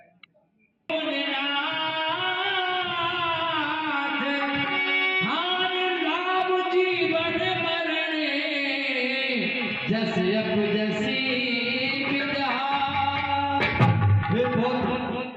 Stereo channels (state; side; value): identical; both; correlation 1.00